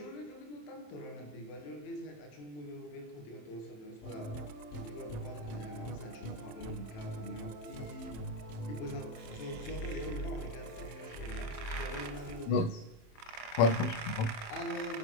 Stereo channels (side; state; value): right; late; 27 ms